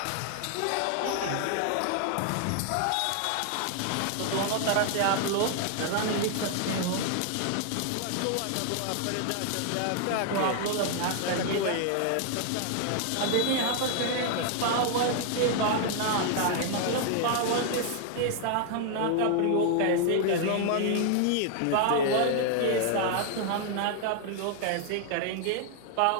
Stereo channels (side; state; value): both; different; correlation 0.00